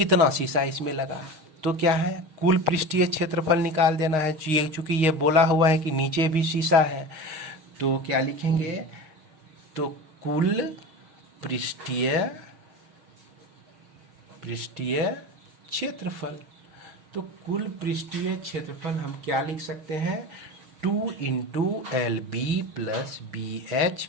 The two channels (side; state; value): left; late; 6.4 ms